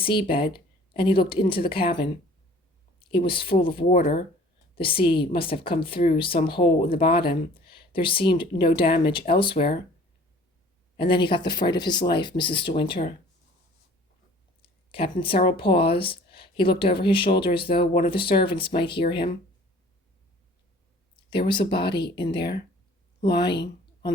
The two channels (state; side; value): normal; both; correlation 0.51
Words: and he looked into the cabin. It was full of water, The sea must have come through some hole in the bottom. There seemed no damage elsewhere. And then he got the fright of his life, Mrs. De Winter. Captain Cyril paused. He looked over his shoulder as though one of the servants might hear him. There was a body in there, lying on